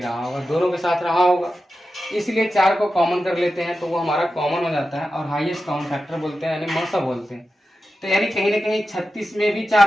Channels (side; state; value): both; normal; correlation 0.92